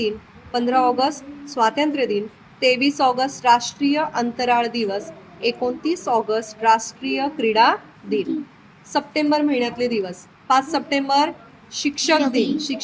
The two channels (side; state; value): both; identical; correlation 1.00